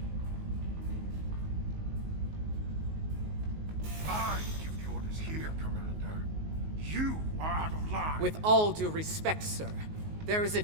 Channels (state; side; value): late; left; 19 ms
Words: I give the orders here, Commander. You are out of line. With all due respect, sir, there is a